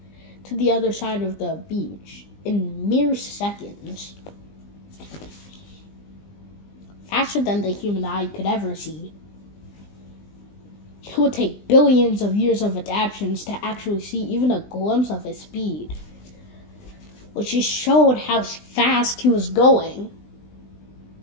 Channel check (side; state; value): right; late; 20 ms